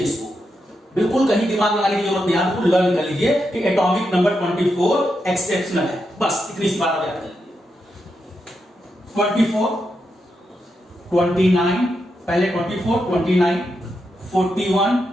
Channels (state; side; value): normal; both; correlation 0.85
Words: इसको, बिल्कुल कहीं दिमाग लगाने की जरूरत नहीं, आपको लर्न कर लीजिए कि एटॉमिक नंबर 24 एक्सेप्शनल है। बस इतनी सी बात आप याद कर लीजिए। 24, 29, पहले 24, 29,